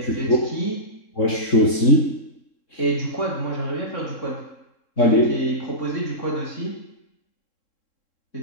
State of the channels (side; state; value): right; late; 3.7 ms